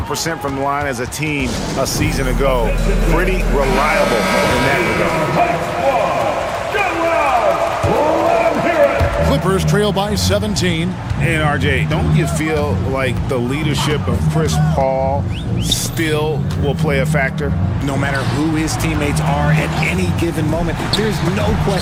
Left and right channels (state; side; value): identical; both; correlation 1.00